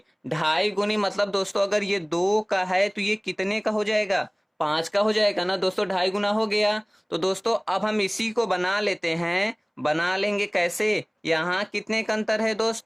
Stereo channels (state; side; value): identical; both; correlation 1.00